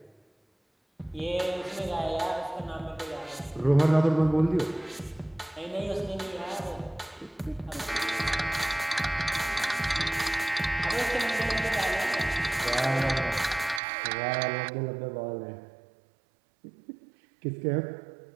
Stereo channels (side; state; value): left; drops out; at 13.8 s